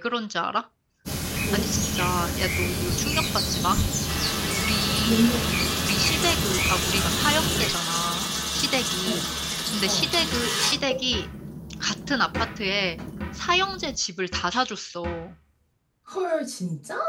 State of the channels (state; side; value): identical; both; correlation 1.00